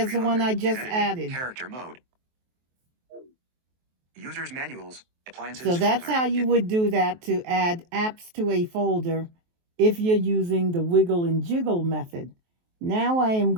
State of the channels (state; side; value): late; left; 23 ms